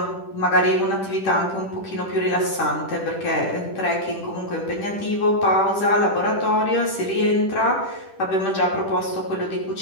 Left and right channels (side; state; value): right; late; 10 ms